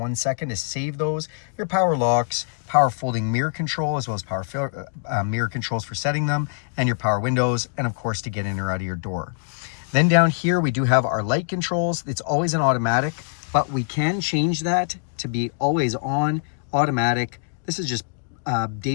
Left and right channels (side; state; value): right; silent; digital silence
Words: second to save those. Your power locks, power folding mirror control, as well as power mirror controls for setting them, and your power windows, and of course to get in or out of your door. Then down here, we do have our light controls. It's always an automatic, but we can change that to be always on, automatic. This is just